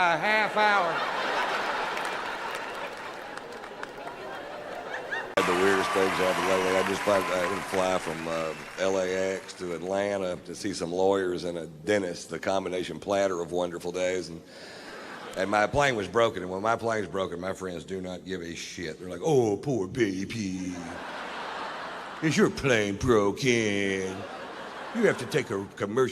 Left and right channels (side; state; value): both; identical; correlation 1.00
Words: a half hour. The weirdest things happened lately. I just fly from LAX to Atlanta to see some lawyers and a dentist, the combination platter of wonderful days. And my plane was broken, and when my plane's broken, my friends do not give a shit. They're like, oh, poor baby. Is your plane broken? You have to take a